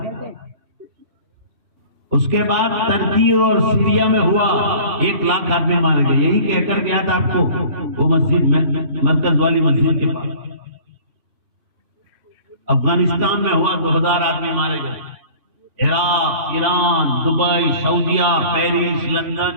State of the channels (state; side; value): late; left; 3.4 ms